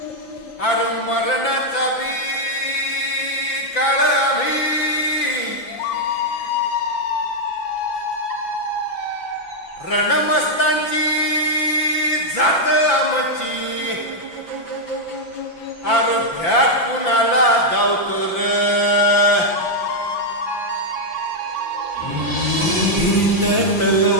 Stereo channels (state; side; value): late; right; 5.9 ms